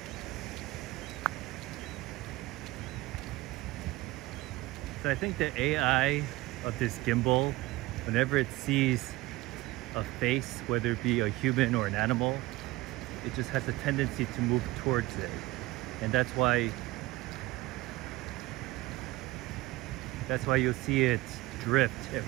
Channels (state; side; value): quieter; left; 19.3 dB